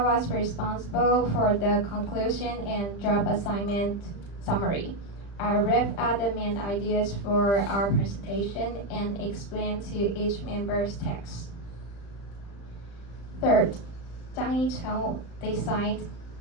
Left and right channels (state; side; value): late; right; 35 ms